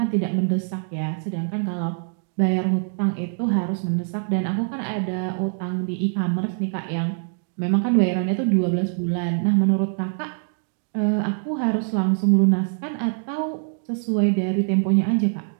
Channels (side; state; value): left; silent; 63 dB below the other